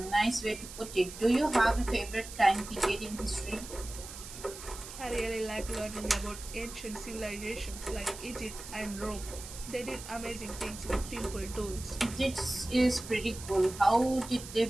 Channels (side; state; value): right; noise; hiss, 12 dB below the sound